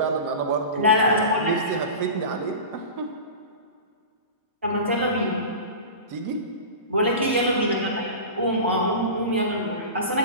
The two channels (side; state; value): both; inverted; correlation -0.31